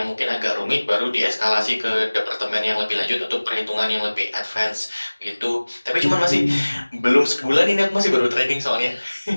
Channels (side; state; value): both; inverted; correlation -1.00